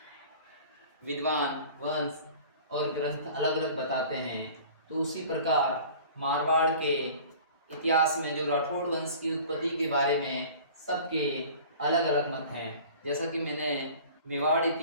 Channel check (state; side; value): inverted; both; correlation -0.44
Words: विद्वान वंश और ग्रंथ अलग अलग बताते हैं। तो उसी प्रकार मारवाड़ के इतिहास में जो राठौड़ वंश की उत्पत्ति के बारे में सबके अलग अलग मत हैं। जैसा कि मैंने मेवाड़